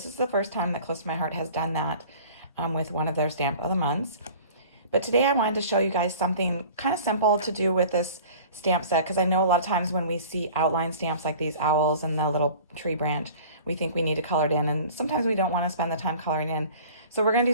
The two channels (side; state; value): both; inverted; correlation -0.44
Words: is the first time that Close to My Heart has done that with one of their stamp of the months. But today I wanted to show you guys something kind of simple to do with this stamp set, because I know a lot of times when we see outline stamps like these owls and the little tree branch, we think we need to color it in, and sometimes we don't want to spend the time coloring in. So we're going to